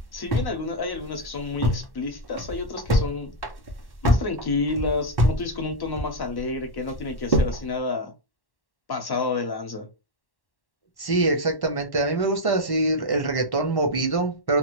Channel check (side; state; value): right; late; 1.1 ms